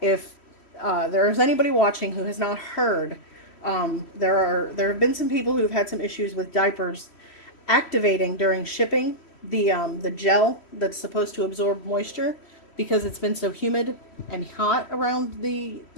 there's anybody watching who has not heard, there have been some people who have had some issues with diapers activating during shipping. The gel that's supposed to absorb moisture because it's been so humid and hot around the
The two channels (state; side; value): late; right; 3.1 ms